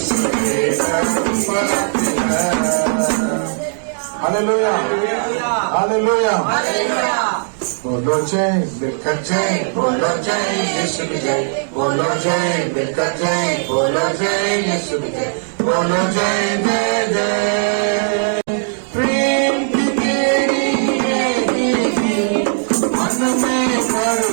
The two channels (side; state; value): left; silent; digital silence